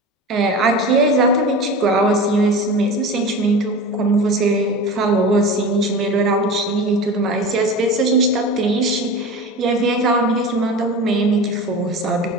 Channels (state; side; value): normal; both; correlation 0.31